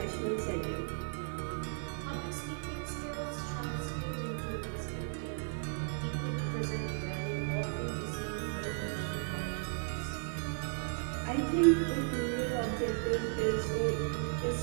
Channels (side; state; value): left; silent; 54 dB below the other